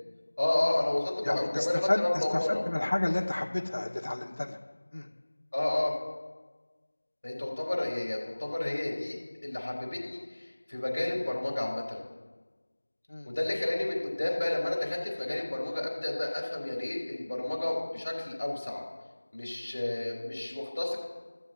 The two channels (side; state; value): both; inverted; correlation -1.00